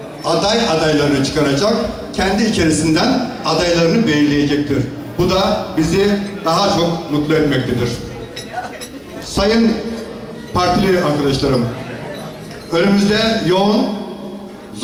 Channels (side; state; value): both; identical; correlation 1.00